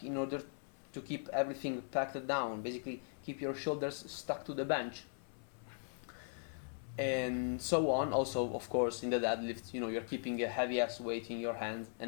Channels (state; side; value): silent; right; 52 dB below the other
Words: in order to keep everything packed down, basically keep your shoulders stuck to the bench. And so on. Also, of course, in the deadlift, you're keeping a heavy ass weight in your hands,